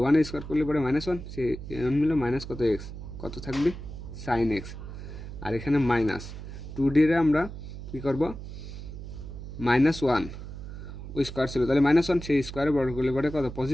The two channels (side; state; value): right; noise; hum, 10 dB below the sound